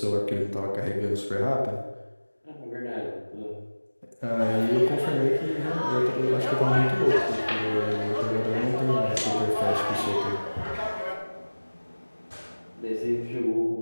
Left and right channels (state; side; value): inverted; both; correlation -1.00